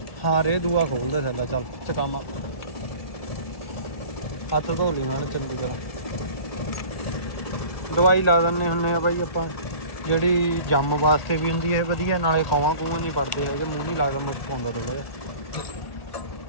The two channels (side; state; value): right; late; 1.6 ms